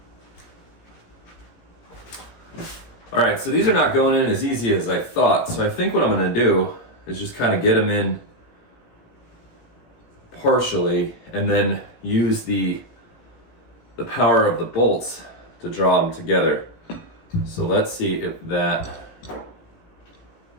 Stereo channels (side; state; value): right; late; 18 ms